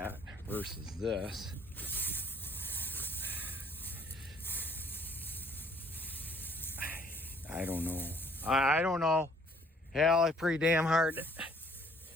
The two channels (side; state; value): both; normal; correlation 0.61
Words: versus this. I don't know. I don't know. Hell, it's pretty damn hard.